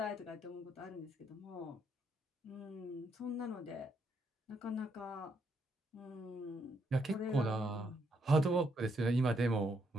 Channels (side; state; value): both; normal; correlation 0.75